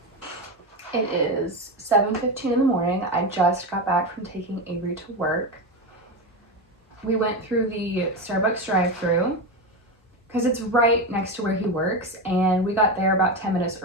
It is 7:15 in the morning. I just got back from taking Avery to work. We went through the Starbucks drive-thru because it's right next to where he works, and we got there about 10 minutes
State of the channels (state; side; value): normal; both; correlation 0.16